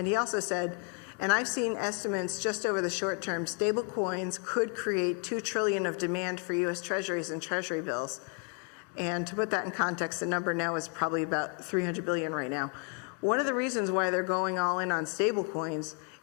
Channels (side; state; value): right; quieter; 37.9 dB